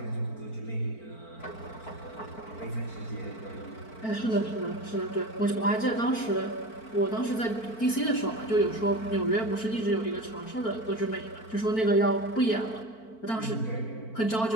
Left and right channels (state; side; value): late; right; 4.5 ms